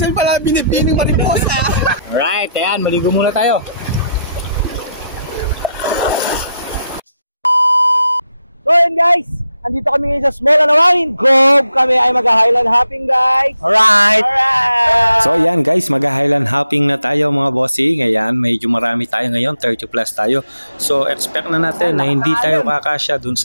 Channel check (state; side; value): inverted; both; correlation -0.81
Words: pala binibining mariposa. Alright, ayan, maligo muna tayo. So yun guys, andito kami ngayon sa Small Anawangin Cove. Kami ay mag-highland hopping guys. Alright! So yan guys, mag-highland hopping na tayo mga bossing. Ayan, medyo marami tayo ngayon, 30 plus tayo. So expect na natin na hindi tayo kakasya dun